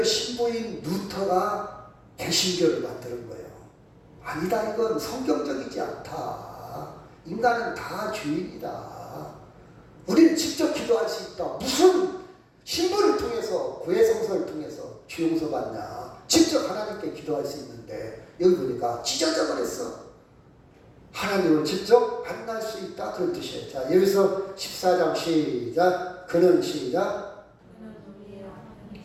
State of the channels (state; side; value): identical; both; correlation 1.00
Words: 신부인 루터가 개신교를 만드는 거예요. 아니다, 이건 성경적이지 않다. 인간은 다 죄인이다. 우리는 직접 기도할 수 있다. 무슨 신부를 통해서, 고해성사를 통해서 죄 용서 받냐. 직접 하나님께 기도할 수 있는데 여기 보니까 찢어져 버렸어. 하나님을 직접 만날 수 있다 그런 뜻이에요. 자, 여기서 14장 시작. 그는 시작.